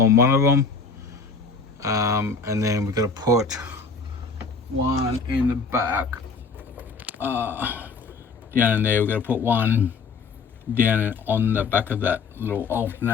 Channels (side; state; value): right; quieter; 4.8 dB